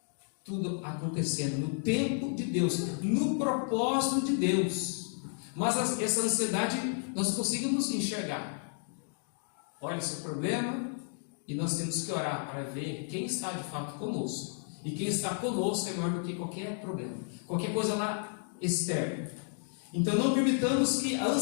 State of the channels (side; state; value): right; silent; 56 dB below the other